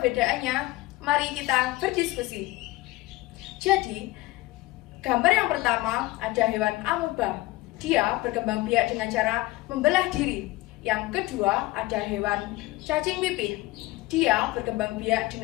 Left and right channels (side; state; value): right; quieter; 19.7 dB